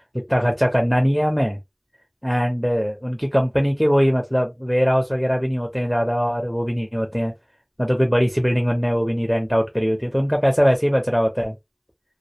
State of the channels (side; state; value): both; identical; correlation 1.00